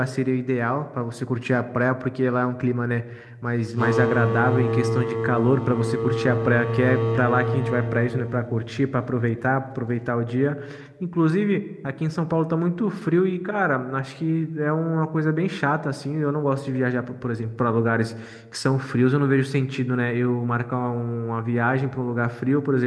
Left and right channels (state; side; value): identical; both; correlation 1.00